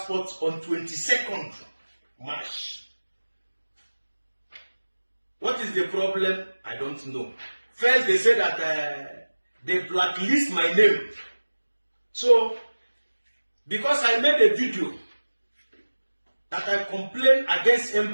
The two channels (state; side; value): inverted; both; correlation -1.00